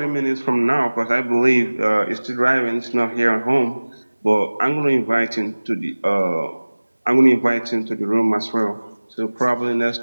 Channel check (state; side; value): inverted; both; correlation -1.00